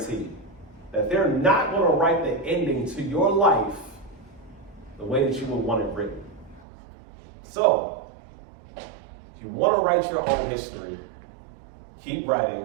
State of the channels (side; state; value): left; drops out; at 6.7 s